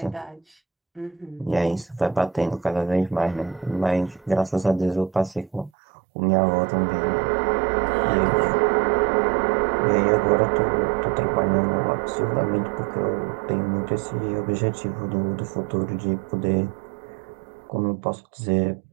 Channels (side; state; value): left; drops out; at 5.7 s